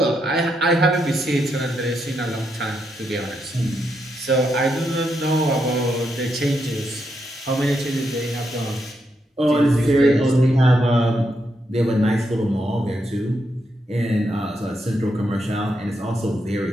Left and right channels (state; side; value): normal; both; correlation 0.81